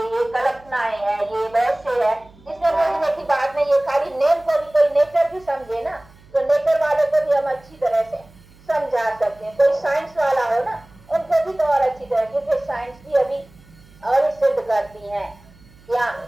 ये कल्पनाएं है, ये वैसे है, इसमें पूछने की बात नहीं। ये खाली नेम को भी कोई नेचर भी समझे ना, तो नेचर वाले को भी हम अच्छी तरह से समझा सकते हैं। कोई साइंस वाला हो ना, उनको भी तो और अच्छी तरह, क्योंकि साइंस भी अभी और सिद्ध करती है क्या,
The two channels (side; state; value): right; noise; hum, 26 dB below the sound